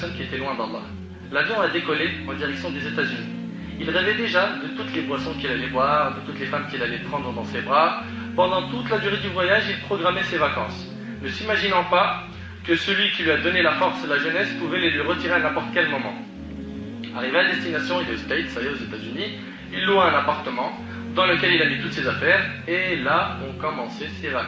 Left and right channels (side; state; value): both; identical; correlation 1.00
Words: qui était loin d'Allah. L'avion a décollé en direction des États-Unis. Il rêvait déjà de toutes les boissons qu'il allait boire, de toutes les femmes qu'il allait prendre dans ses bras. Pendant toute la durée du voyage, il programmait ses vacances, ne s'imaginant pas que celui qui lui a donné la force et la jeunesse pouvait les lui retirer à n'importe quel moment. Arrivé à destination, il est aux States, ça y est, aux États-Unis. Il loua un appartement dans lequel il a mis toutes ses affaires, et là ont commencé ses